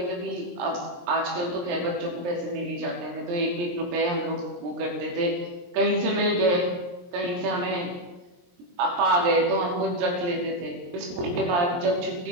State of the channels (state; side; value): late; left; 23 ms